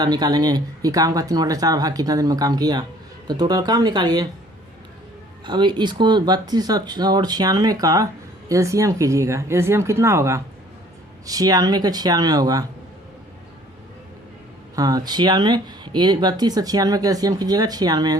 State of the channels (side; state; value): both; normal; correlation 0.55